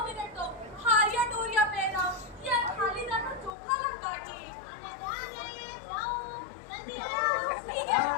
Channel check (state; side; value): drops out; right; at 3.5 s